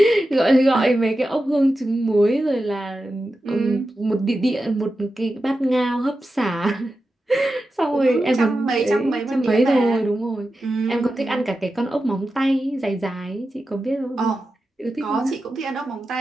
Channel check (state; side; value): normal; both; correlation 0.91